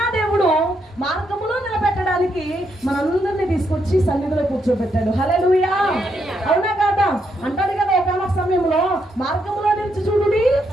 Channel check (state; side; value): normal; both; correlation 0.78